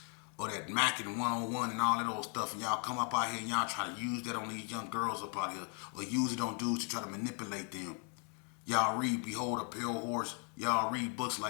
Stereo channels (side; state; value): right; quieter; 39.8 dB